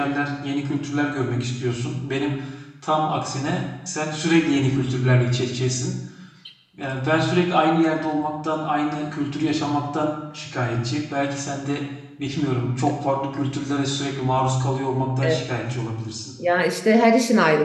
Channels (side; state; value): both; identical; correlation 1.00